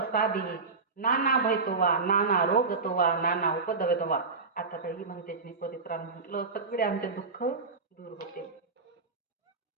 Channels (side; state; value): left; quieter; 4.3 dB